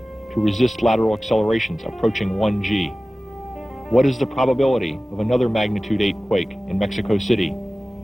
to resist lateral accelerations approaching 1 G? What is the probability of another magnitude 8 quake in Mexico City?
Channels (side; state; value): both; normal; correlation 0.97